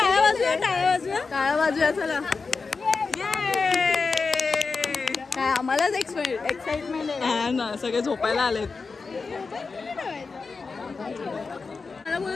वाजूया चला. काय आम्हालाच एक्साइटमेंट आहे ना. सगळे झोपायला आलेत. मला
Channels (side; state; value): right; quieter; 4.5 dB